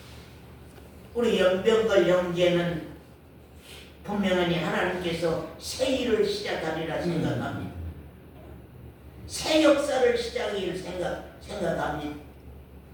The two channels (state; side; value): identical; both; correlation 1.00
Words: 우리 연병걸 형제는 분명히 하나님께서 새 일을 시작하리라 생각합니다. 새 역사를 시작하기를 생각합니다.